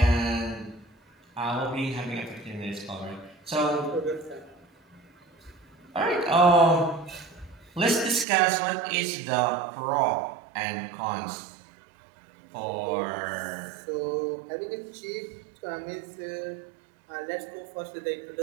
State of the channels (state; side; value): drops out; left; at 8.2 s